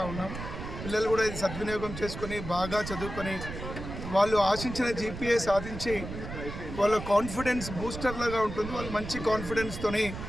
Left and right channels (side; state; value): right; noise; rumble, 8 dB below the sound